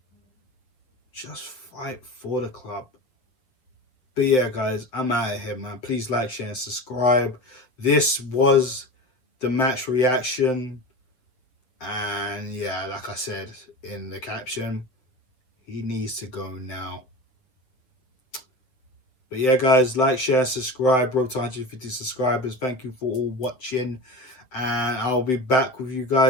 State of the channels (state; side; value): late; right; 7.9 ms